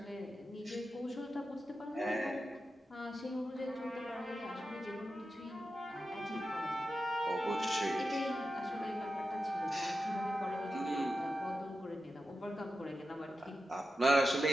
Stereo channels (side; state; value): both; normal; correlation 0.90